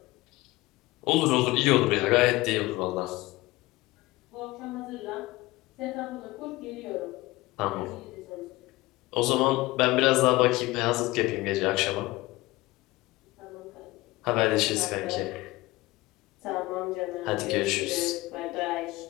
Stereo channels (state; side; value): quieter; right; 19.9 dB